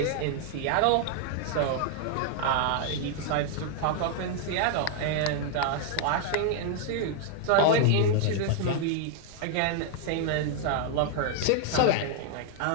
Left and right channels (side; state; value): both; different; correlation 0.00